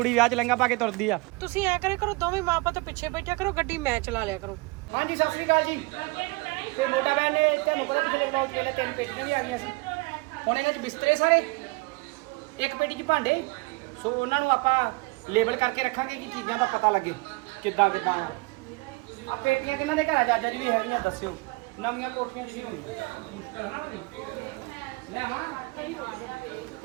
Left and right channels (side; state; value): left; quieter; 25.6 dB